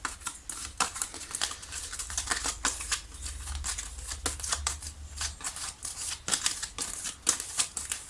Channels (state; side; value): identical; both; correlation 1.00